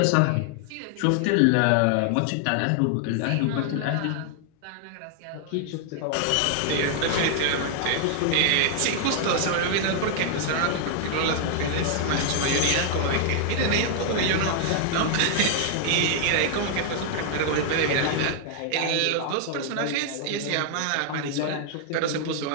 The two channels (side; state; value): both; different; correlation 0.00